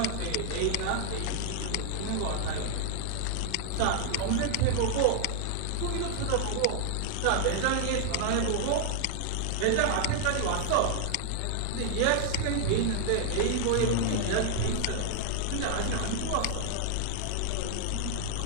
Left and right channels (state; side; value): different; both; correlation 0.00